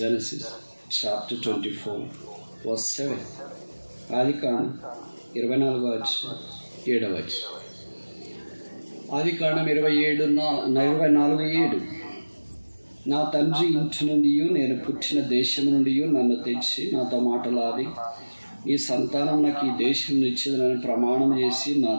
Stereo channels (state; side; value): inverted; both; correlation -1.00